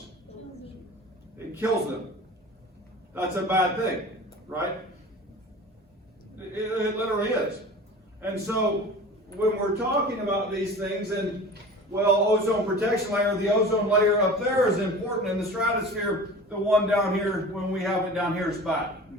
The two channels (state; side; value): normal; both; correlation 0.38